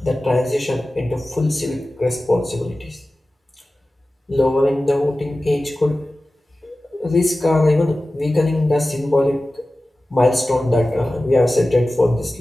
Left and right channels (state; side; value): normal; both; correlation 0.96